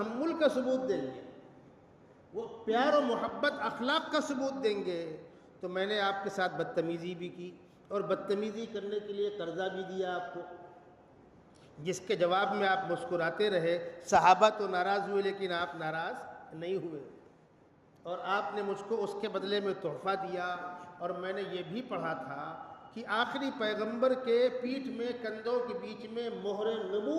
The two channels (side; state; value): both; identical; correlation 1.00